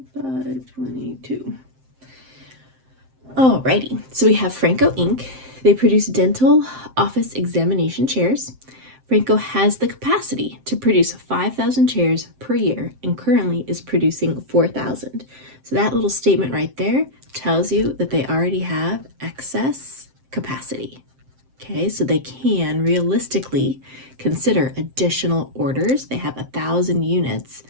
522. Alrighty, so we have Franco Inc. They produce dental office examination chairs. Franco has the capacity to produce 5,000 chairs per year and currently is producing 4,000. So that little statement right there tells you that they already have excess capacity. Okay, so they can realistically consider additional orders. They have 1,000 units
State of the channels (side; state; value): left; late; 7.6 ms